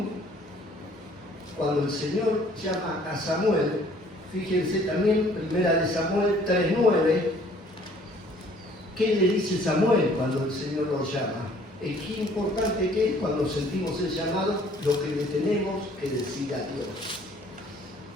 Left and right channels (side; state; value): both; normal; correlation 0.57